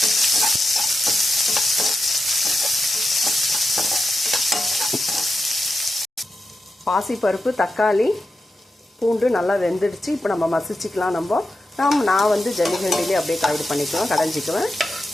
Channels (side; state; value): both; normal; correlation 0.89